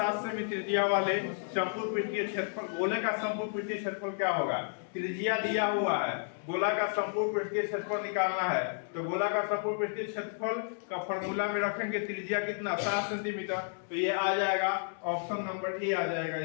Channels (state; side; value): silent; right; digital silence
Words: सेमी त्रिज्या वाले संपूर्ण पृष्ठीय क्षेत्रफल, गोले का संपूर्ण पृष्ठीय क्षेत्रफल क्या होगा? त्रिज्या दिया हुआ है, गोला का संपूर्ण पृष्ठीय क्षेत्रफल निकालना है। तो गोला का संपूर्ण पृष्ठीय क्षेत्रफल का फॉर्मूला में रखेंगे त्रिज्या कितना? 7 सेंटीमीटर। तो ये आ जाएगा ऑप्शन नंबर ए आ जाएगा